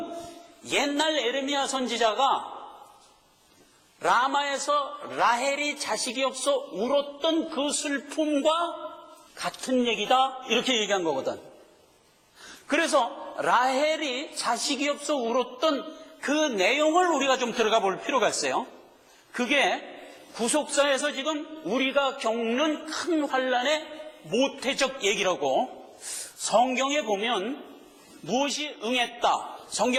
옛날 에레미야 선지자가 라마에서 라헬이 자식이 없어 울었던 그 슬픔과 같은 얘기다 이렇게 얘기한 거거든. 그래서 라헬이 자식이 없어 울었던 그 내용을 우리가 좀 들어가 볼 필요가 있어요. 그게 구속사에서 지금 우리가 겪는 큰 환란의 모태적 얘기라고. 성경에 보면 무엇이 응했다,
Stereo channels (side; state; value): both; identical; correlation 1.00